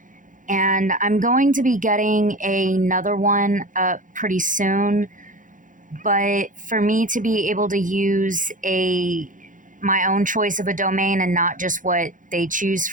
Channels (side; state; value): left; late; 0.38 ms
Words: And I'm going to be getting another one up pretty soon. But for me to be able to use my own choice of a domain and not just what they choose